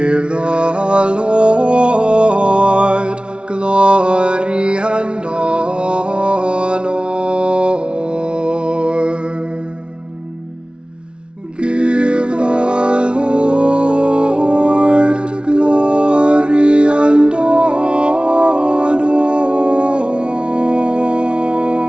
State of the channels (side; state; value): left; late; 0.057 ms